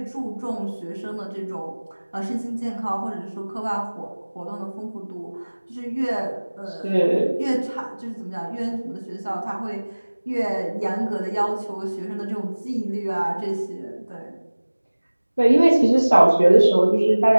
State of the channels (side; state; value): both; inverted; correlation -1.00